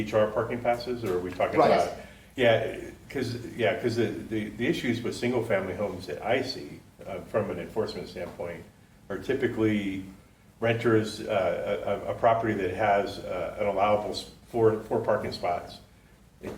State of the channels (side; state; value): both; identical; correlation 1.00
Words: parking passes, or are we talking Right. about? Yeah, because the issues with single family homes that I see from an enforcement standpoint are typically renters, a property that has an allowable four parking spots, and